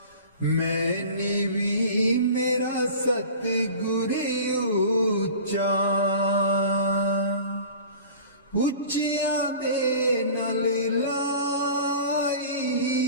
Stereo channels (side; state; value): both; inverted; correlation -0.40